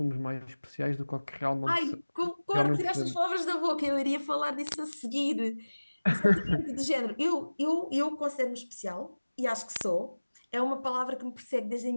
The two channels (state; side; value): inverted; both; correlation -1.00